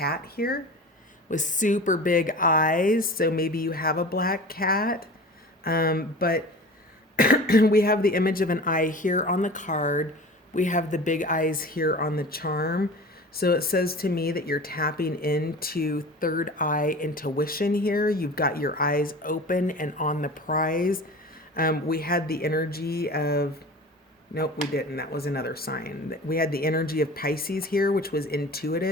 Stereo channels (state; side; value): normal; both; correlation 0.37